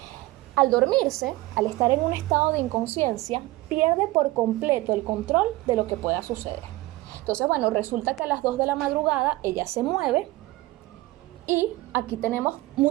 Al dormirse, al estar en un estado de inconsciencia, pierde por completo el control de lo que pueda suceder. Entonces, bueno, resulta que a las 2 de la madrugada ella se mueve y aquí tenemos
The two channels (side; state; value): left; quieter; 18.9 dB